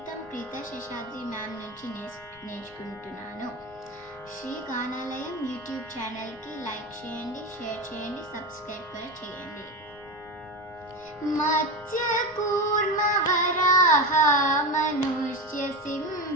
ప్రీత శేషాద్రి మ్యామ్ నుంచి నేర్చుకుంటున్నాను. శ్రీ గానాలయం యూట్యూబ్ ఛానల్కి లైక్ చేయండి, షేర్ చేయండి, సబ్స్క్రైబ్ కూడా చేయండి. మత్స్యకూర్మ వరాహ మనుష్య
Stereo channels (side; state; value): left; noise; rumble, 25 dB below the sound